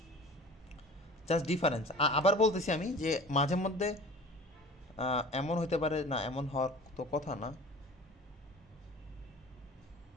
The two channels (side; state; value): both; normal; correlation 0.42